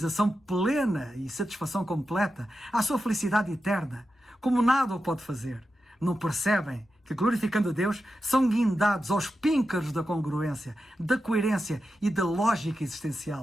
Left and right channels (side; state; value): both; normal; correlation 0.90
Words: plena e satisfação completa, à sua felicidade eterna, como nada o pode fazer. Não percebem que, glorificando a Deus, são guindados aos píncaros da congruência, da coerência e da lógica